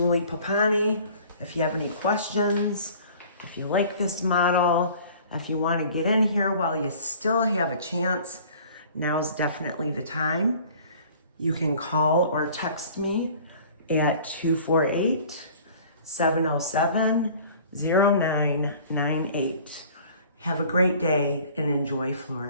Papagni, if you have any questions, if you like this model, if you want to get in here while you still have a chance, now's definitely the time. You can call or text me at 248-707-0998. Have a great day and enjoy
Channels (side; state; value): both; inverted; correlation -0.49